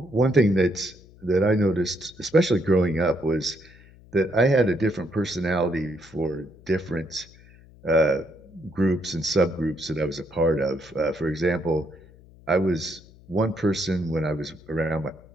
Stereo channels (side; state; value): left; noise; hum, 24 dB below the sound